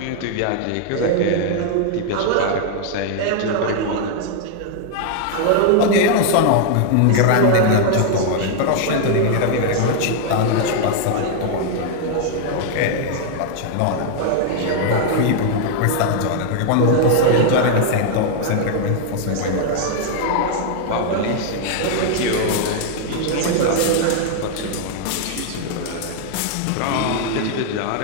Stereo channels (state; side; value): different; both; correlation -0.01